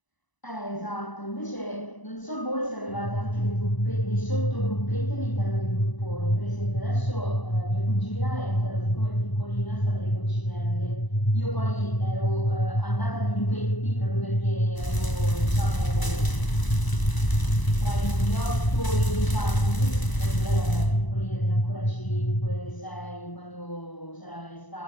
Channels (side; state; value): right; late; 1.0 ms